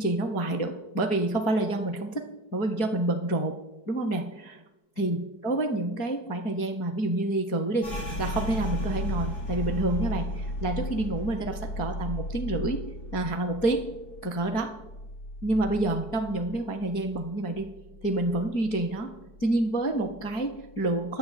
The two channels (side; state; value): right; late; 4.7 ms